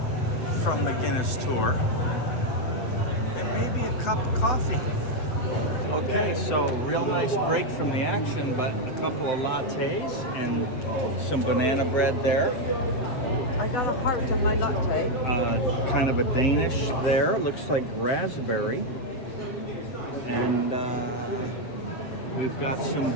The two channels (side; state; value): right; late; 7.7 ms